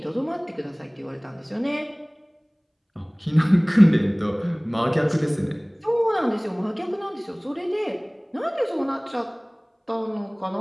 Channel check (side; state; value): both; identical; correlation 1.00